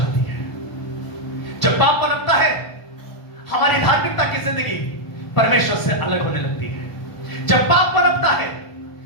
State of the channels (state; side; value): late; right; 1.4 ms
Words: है। जब पाप पनपता है, हमारी धार्मिकता की जिंदगी परमेश्वर से अलग होने लगती है। जब पाप पनपता है